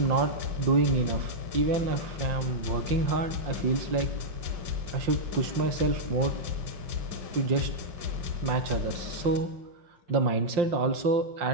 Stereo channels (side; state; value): left; late; 5.7 ms